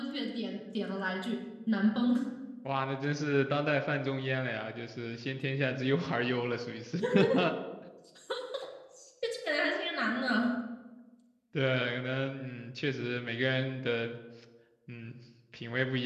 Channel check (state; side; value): identical; both; correlation 1.00